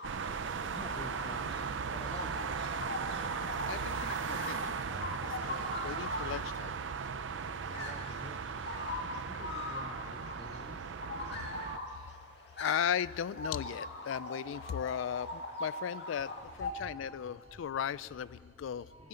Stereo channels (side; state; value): both; normal; correlation -0.12